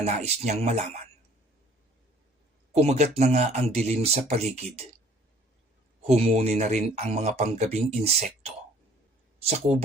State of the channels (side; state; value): both; normal; correlation 0.55